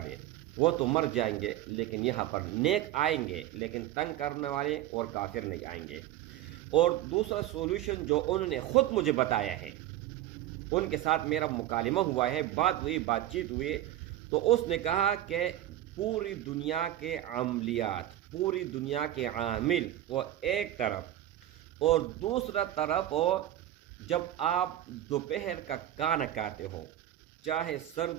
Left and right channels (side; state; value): left; quieter; 13.3 dB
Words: دیں، وہ تو مر جائیں گے لیکن یہاں پر نیک آئیں گے، لیکن تنگ کرنے والے اور کافر نہیں آئیں گے۔ اور دوسرا سولوشن جو انہوں نے خود مجھے بتایا ہے، ان کے ساتھ میرا مکالمہ ہوا ہے، بات چیت ہوئی، تو اس نے کہا کہ پوری دنیا کے عملیات، پوری دنیا کے عامل وہ ایک طرف، اور دوسرا طرف وہ جب آپ دوپہر کا کھانا کھاتے ہو، چاہے